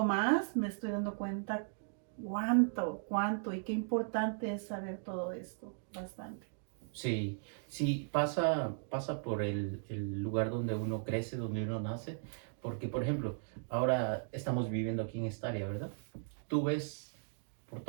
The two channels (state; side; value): silent; left; digital silence